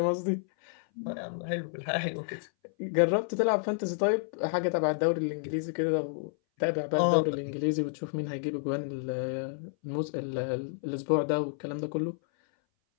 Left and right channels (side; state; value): right; silent; 58 dB below the other